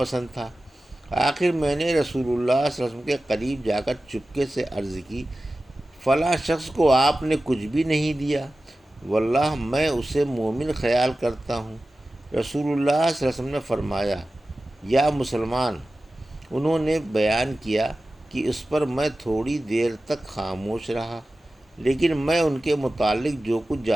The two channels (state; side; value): normal; both; correlation 0.95